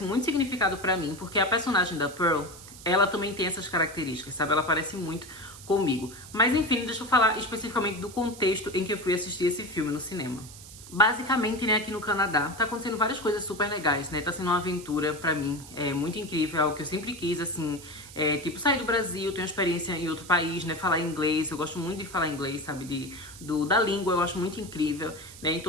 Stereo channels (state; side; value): noise; right; hiss, 17 dB below the sound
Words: muito significado pra mim, porque a personagem da Pearl, ela também tem essas características, sabe? Ela parece muito comigo. Mas enfim, deixa eu falar especificamente do contexto em que eu fui assistir esse filme no cinema. Basicamente, né, aqui no Canadá, tá acontecendo várias coisas super legais, né? Tá sendo uma aventura pra mim, é muito incrível, é algo que eu sempre quis, assim, tipo, sair do Brasil, ter uma experiência em outro país, né? Falar inglês, eu gosto muito de falar inglês, sabe? Da língua, eu acho muito incrível, né?